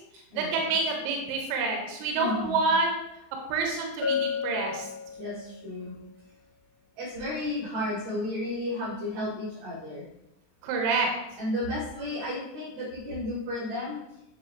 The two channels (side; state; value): left; late; 26 ms